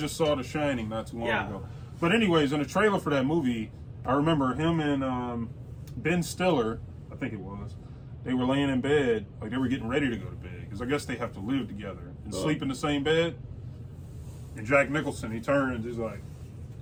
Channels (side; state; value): both; identical; correlation 1.00